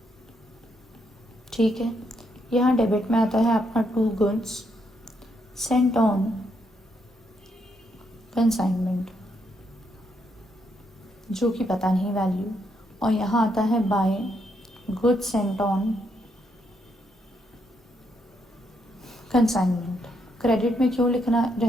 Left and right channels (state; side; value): normal; both; correlation 0.77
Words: ठीक है, यहाँ डेबिट में आता है आपका 2 गुड्स सेंट ऑन कंसाइनमेंट, जो कि पता नहीं वैल्यू, और यहाँ आता है by goods sent on consignment. Credit में क्यों लिखना